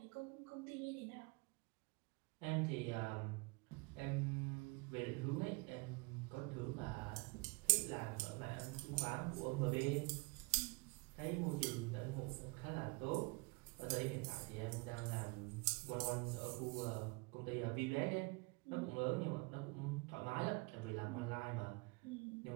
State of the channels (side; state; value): left; quieter; 28.8 dB